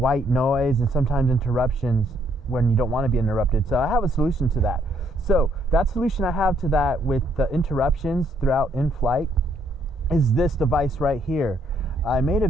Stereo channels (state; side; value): normal; both; correlation 0.69